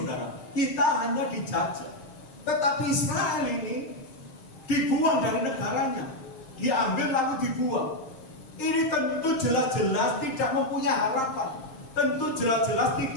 Kita hanya dijajah. Tetapi Israel ini dibuang dari negaranya, diambil lalu dibuang. Ini tentu jelas-jelas tidak mempunyai harapan, tentu jelas-jelas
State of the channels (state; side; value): late; right; 7.6 ms